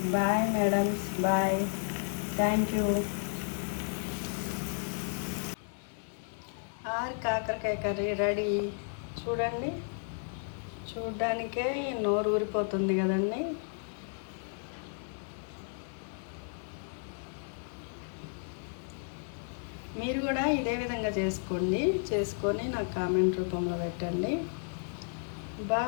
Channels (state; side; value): silent; right; 56 dB below the other